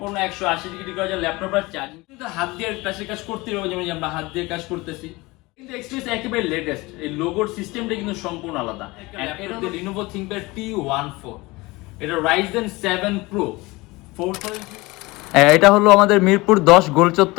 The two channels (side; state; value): right; quieter; 22.4 dB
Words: 180 ডিগ্রি করা যায় ল্যাপটপটা। চার্জিং কিন্তু হাত দিয়ে টাচের কাজ করতে হবে, যেমন আমরা হাত দিয়ে কাজ করতেছি, কিন্তু এক্সপিরিয়েন্স একেবারে লেটেস্ট। এই লোগোর সিস্টেমটা কিন্তু সম্পূর্ণ আলাদা। এটা Lenovo ThinkPad T14, এটা Ryzen 7 Pro 4000। এটা হলো আমাদের মিরপুর 10 গোল